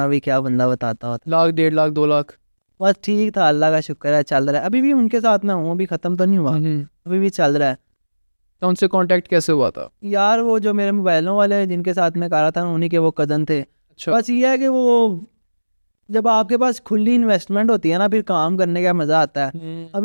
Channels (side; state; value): both; inverted; correlation -1.00